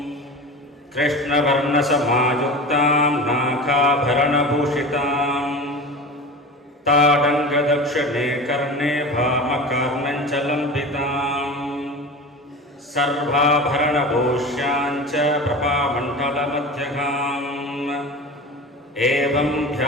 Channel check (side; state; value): both; normal; correlation 0.32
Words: कृष्णवर्णसमायुक्तां नाखाभरणभूषितां ताडङ्गदक्षिणे कर्णे भामकार्णञ्चलम्बितां सर्वाभरणभूष्याञ्च प्रभामण्डलमध्यगाम् एवं